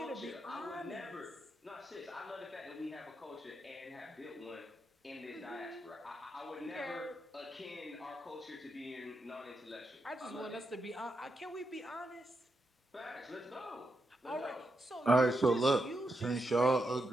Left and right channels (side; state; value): both; normal; correlation 0.84